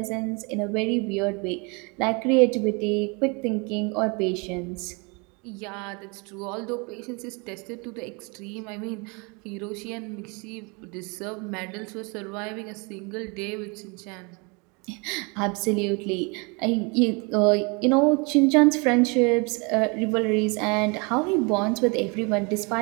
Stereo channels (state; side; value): quieter; left; 30.8 dB